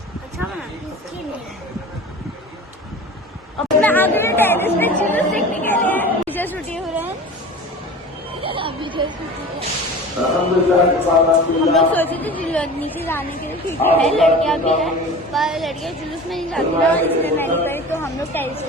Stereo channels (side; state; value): both; normal; correlation 0.37